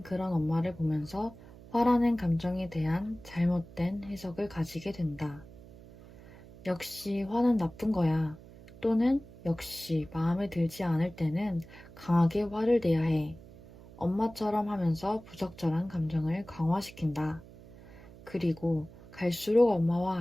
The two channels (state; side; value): noise; right; hum, 19 dB below the sound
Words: 그런 엄마를 보면서 화라는 감정에 대한 잘못된 해석을 가지게 된다. 역시 화는 나쁜 거야. 또는 역시 마음에 들지 않을 때는 강하게 화를 내야 해. 엄마처럼 하면서 부적절한 감정을 강화시킨다. 그리고 갈수록 엄마와